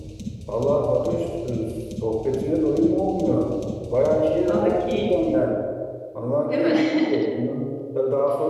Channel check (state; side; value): identical; both; correlation 1.00